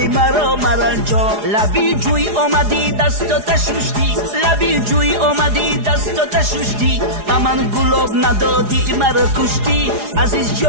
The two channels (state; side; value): late; left; 4.8 ms